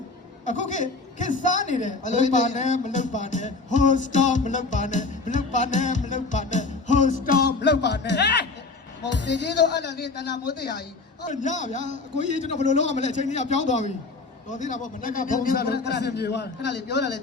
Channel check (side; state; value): right; quieter; 3.7 dB